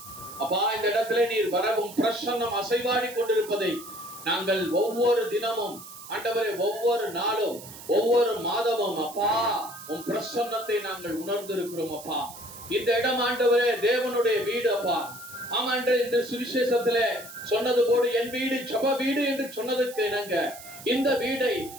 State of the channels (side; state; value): right; noise; hiss, 15 dB below the sound